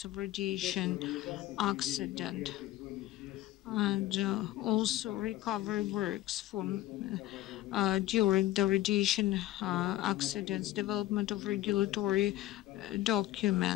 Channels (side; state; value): right; quieter; 15.2 dB